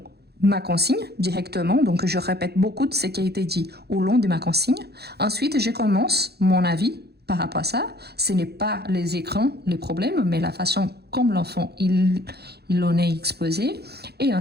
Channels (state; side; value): late; left; 0.47 ms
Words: ma consigne directement, donc je répète beaucoup de ce qui a été dit au long de ma consigne. Ensuite, je commence mon avis par rapport à ça. Ce n'est pas les écrans les problèmes, mais la façon comme l'enfant il en est exposé. Et